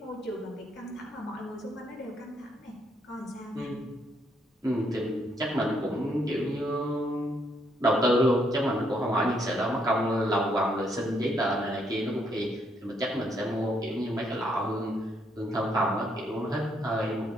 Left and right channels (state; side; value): normal; both; correlation 0.73